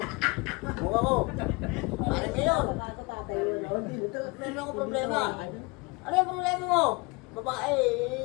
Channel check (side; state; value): right; quieter; 27.7 dB